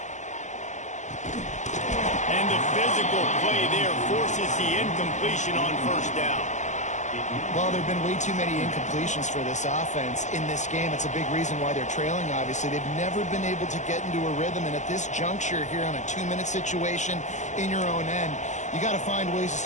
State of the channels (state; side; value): late; right; 0.35 ms